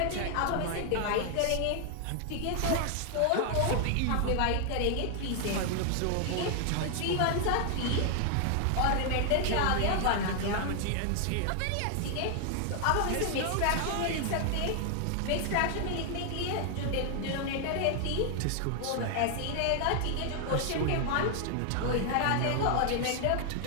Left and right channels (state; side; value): different; both; correlation 0.00